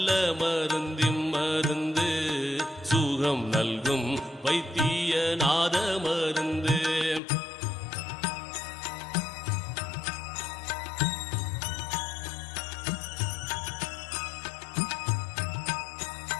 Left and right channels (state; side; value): drops out; right; at 7.2 s